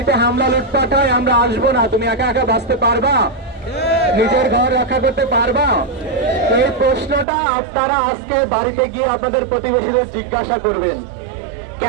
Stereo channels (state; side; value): drops out; left; at 7.2 s